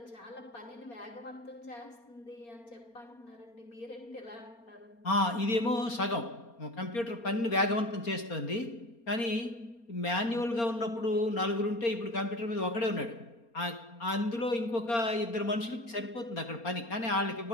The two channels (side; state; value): right; late; 4.3 ms